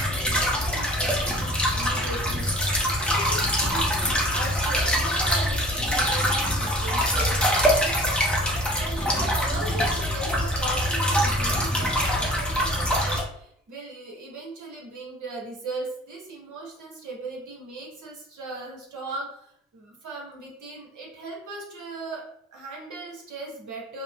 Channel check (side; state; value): both; normal; correlation 0.47